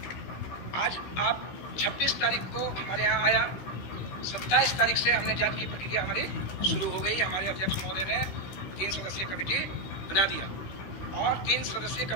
आज आप 26 तारीख को हमारे यहाँ आया, 27 तारीख से हमने जांच की प्रक्रिया हमारी शुरू हो गई। हमारे अध्यक्ष महोदय ने 3 सदस्यीय कमेटी बना दिया और 3 सदस्यीय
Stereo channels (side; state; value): right; late; 16 ms